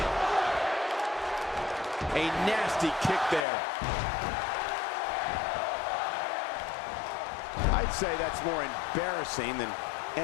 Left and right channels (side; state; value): right; drops out; at 3.5 s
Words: A nasty kick there. I'd say that's more embarrassing than